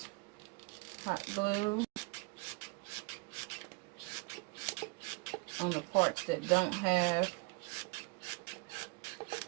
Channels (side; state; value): left; quieter; 29.5 dB